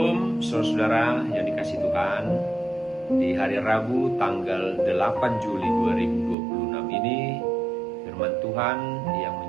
saudara-saudara yang dikasihi Tuhan. Di hari Rabu tanggal 8 Juli 2026 ini, firman Tuhan yang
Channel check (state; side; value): drops out; left; at 6.4 s